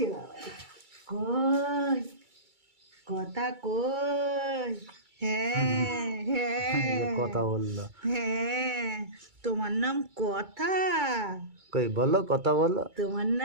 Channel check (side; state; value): left; late; 2.3 ms